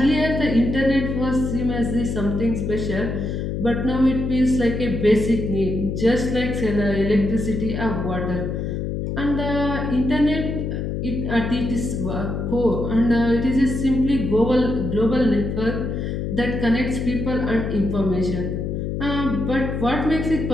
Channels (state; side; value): noise; left; hum, 3 dB below the sound